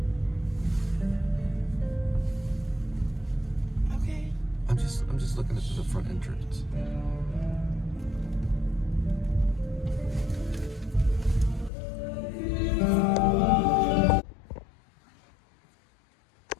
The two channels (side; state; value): right; drops out; at 11.7 s